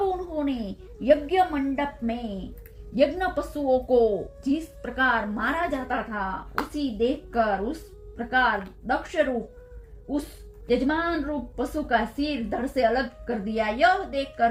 उन्होंने यज्ञ मंडप में यज्ञ पशुओं को जिस प्रकार मारा जाता था उसी देखकर उस प्रकार दक्ष रूप उस यजमान रूप पशु का सिर धड़ से अलग कर दिया। यह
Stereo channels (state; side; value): identical; both; correlation 1.00